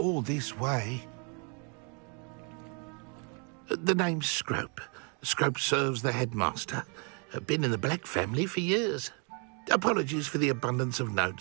this way. The name's Scrope. Scrope serves the headmaster. Been in the Black family for years. Apologies for the abundance of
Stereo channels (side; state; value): left; quieter; 36.5 dB